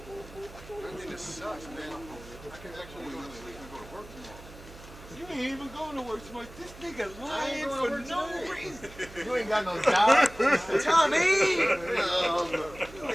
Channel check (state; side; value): noise; right; hum, 18 dB below the sound